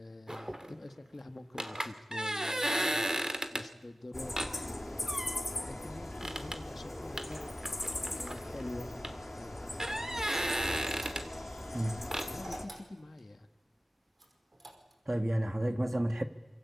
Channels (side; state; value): both; normal; correlation 0.95